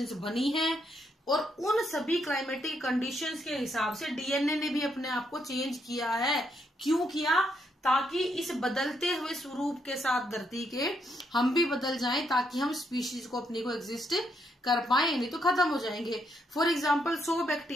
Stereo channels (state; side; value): normal; both; correlation 0.76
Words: बनी हैं। और उन सभी क्लाइमेटिक कंडीशंस के हिसाब से डीएनए ने भी अपने आप को चेंज किया है। क्यों किया, ताकि इस बदलते हुए स्वरूप के साथ धरती के हम भी बदल जाएं, ताकि हम स्पीशीज को अपनी को एग्जिस्ट कर पाए, नहीं तो खत्म हो जाएंगे। फॉर एग्जाम्पल 100